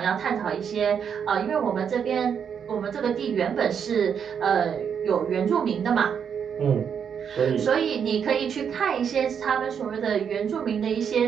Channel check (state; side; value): quieter; left; 7.5 dB